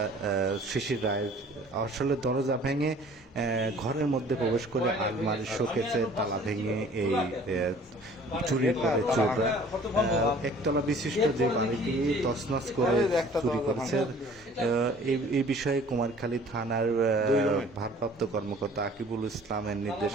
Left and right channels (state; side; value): normal; both; correlation 0.51